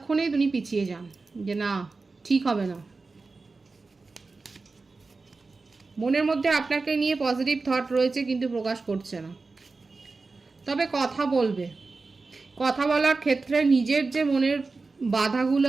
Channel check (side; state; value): left; quieter; 3.9 dB